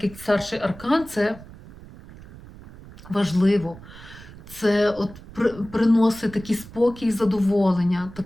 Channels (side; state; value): right; noise; rumble, 18 dB below the sound